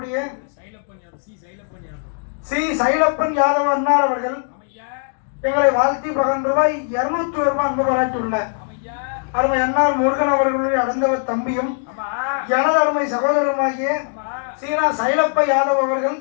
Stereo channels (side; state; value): right; silent; 64 dB below the other